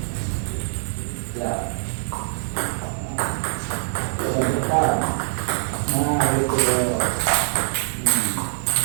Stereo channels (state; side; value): silent; left; digital silence